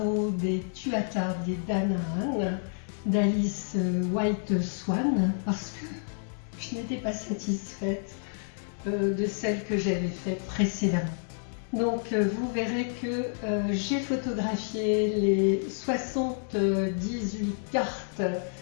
des Tuatha Dé Danann d'Alice White Swan parce que je n'étais pas satisfaite de celle que j'avais faite précédemment. Donc vous verrez que j'ai photographié les 78 cartes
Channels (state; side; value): silent; right; digital silence